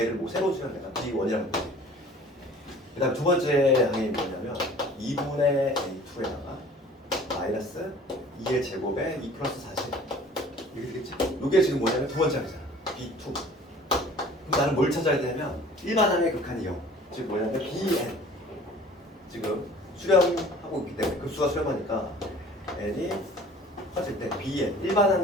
뭐 새로 쓰면 내가 B1이라고 보지. 그 다음 두 번째 항이 뭐냐면 2분의 A2에다가 마이너스 2의 제곱에 2 플러스 40 이렇게 되겠지. 요게 지금 뭐냐면 두 번째 항이잖아. B2. 그럼 나는 뭘 찾아야 되냐면 일반항의 극한이 0. 즉 뭐냐면 BN. 지금 수렴하고 있기 때문에 급수가 수렴하니까 n이 커질 때 bn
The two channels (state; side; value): normal; both; correlation 0.48